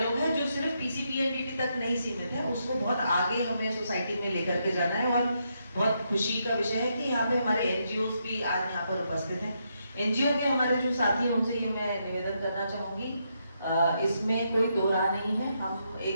है जो सिर्फ PCPNDT तक नहीं सीमित है, उसको बहुत आगे हमें सोसाइटी में लेकर के जाना है। और बहुत खुशी का विषय है कि यहाँ पे हमारे NGOs भी आज यहाँ पर उपस्थित हैं। NGO के हमारे जो साथी हैं उनसे ये मैं निवेदन करना चाहूंगी, इसमें कोई दो राह नहीं है, हम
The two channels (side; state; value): both; inverted; correlation -0.80